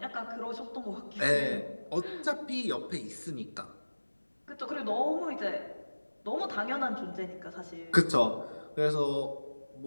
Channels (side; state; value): both; inverted; correlation -1.00